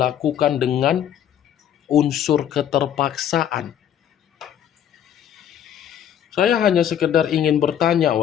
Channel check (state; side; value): quieter; right; 9.8 dB